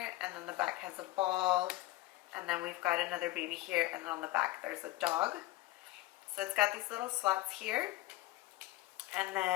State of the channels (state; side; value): quieter; right; 17.8 dB